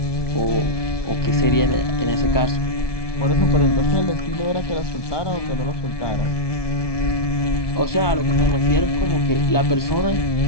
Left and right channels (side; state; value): right; late; 1.2 ms